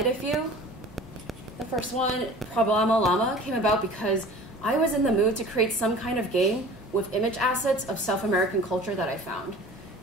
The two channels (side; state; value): both; normal; correlation 0.43